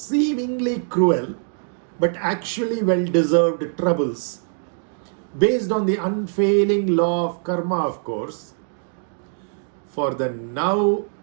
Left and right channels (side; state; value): left; silent; digital silence